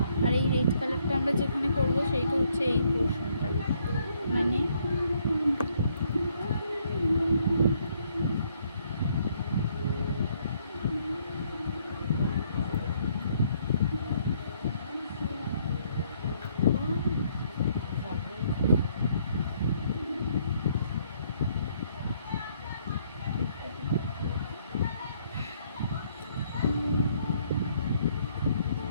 আর এই রেড কালারটা আমরা যেখানে করবো সেইটা হচ্ছে এই পোর্শনটা মানে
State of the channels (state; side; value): inverted; both; correlation -0.68